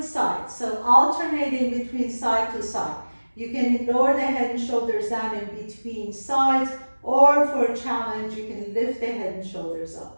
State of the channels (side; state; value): both; inverted; correlation -1.00